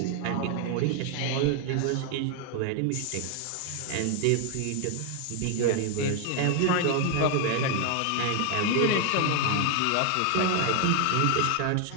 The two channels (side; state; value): both; different; correlation 0.00